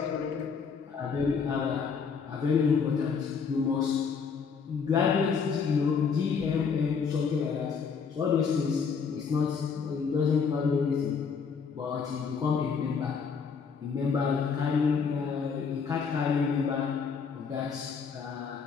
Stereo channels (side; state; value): right; quieter; 5.9 dB